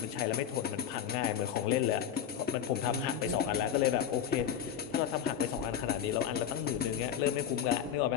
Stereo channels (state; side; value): quieter; right; 9.2 dB